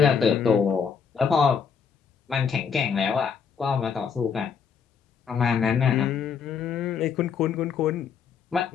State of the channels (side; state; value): right; quieter; 6.6 dB